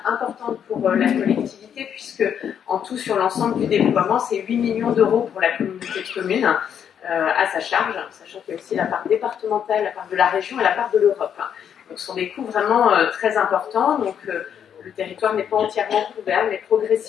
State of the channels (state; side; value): quieter; right; 8.5 dB